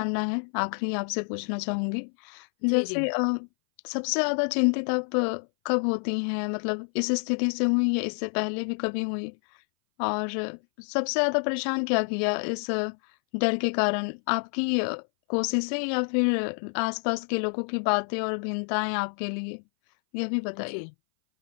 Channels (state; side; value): silent; right; 59 dB below the other